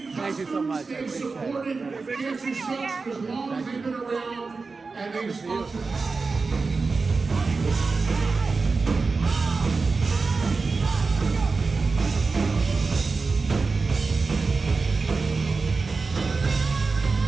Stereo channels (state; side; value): quieter; left; 4.2 dB